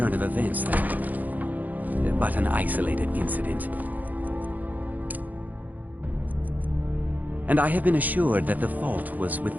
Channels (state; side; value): late; left; 0.081 ms